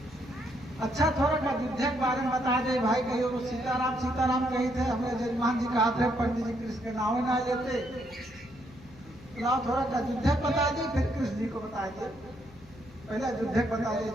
अच्छा थोड़ा का अयोध्या के बारे में बता दे भाई। कहियो तो सीताराम सीताराम कही थे, हमें जजमान जी कहा थे पंडित जी कृष्ण के नाम ना लेते, तो थोड़ा का अयोध्या बता दे, फिर कृष्ण जी को बता दे। पहले अयोध्या बता दे,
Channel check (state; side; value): noise; left; hum, 21 dB below the sound